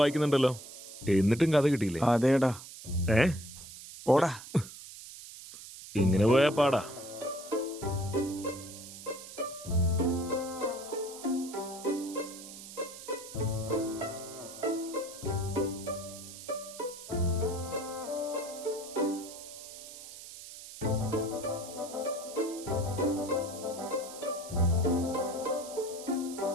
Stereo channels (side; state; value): right; noise; hiss, 14 dB below the sound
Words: വായിക്കുന്നുണ്ടല്ലോ, എന്നിട്ടും കഥ കിട്ടിയില്ലേ? അതേടാ. പോടാ. ഇങ്ങനെ പോയാ പാടാ.